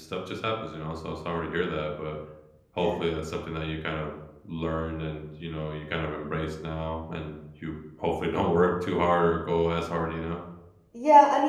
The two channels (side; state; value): both; identical; correlation 1.00